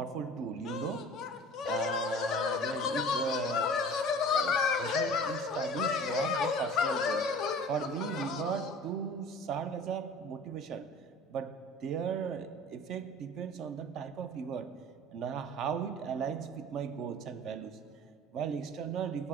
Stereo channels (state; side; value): normal; both; correlation 0.43